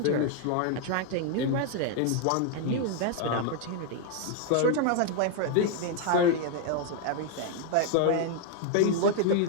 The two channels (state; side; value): different; both; correlation 0.00